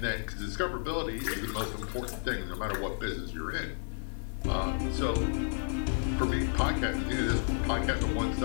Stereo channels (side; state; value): right; silent; digital silence